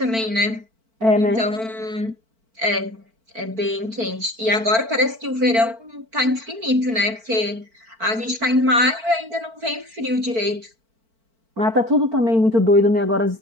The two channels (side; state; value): left; late; 4.5 ms